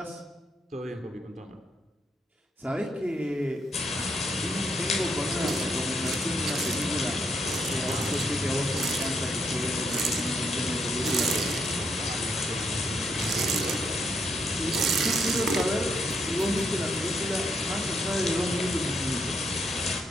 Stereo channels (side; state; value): both; normal; correlation 0.76